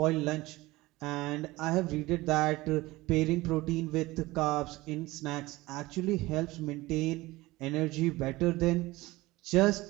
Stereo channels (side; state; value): left; quieter; 19.7 dB